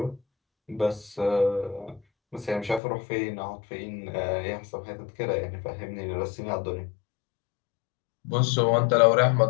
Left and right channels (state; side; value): drops out; right; at 2.8 s